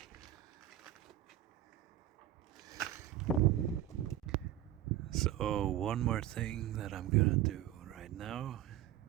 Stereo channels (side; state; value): left; quieter; 12.7 dB